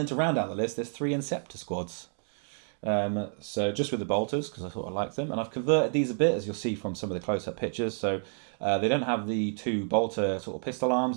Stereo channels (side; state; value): left; silent; 58 dB below the other